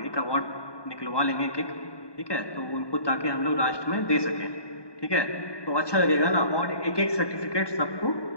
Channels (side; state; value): right; late; 1.2 ms